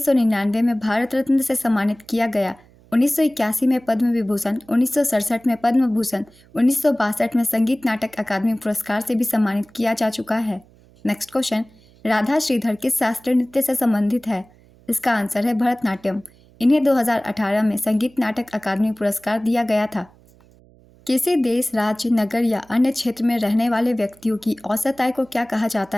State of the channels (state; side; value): noise; right; hum, 28 dB below the sound